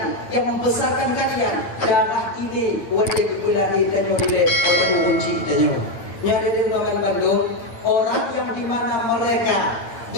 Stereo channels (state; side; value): late; right; 9.2 ms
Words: yang membesarkan kalian. Darah ini wajib berkulahi tanyo dile oleh urunci tanyo. Nyada di Bandung, orang yang dimana mereka